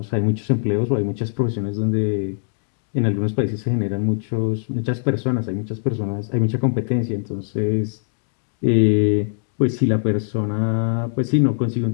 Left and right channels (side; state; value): right; silent; digital silence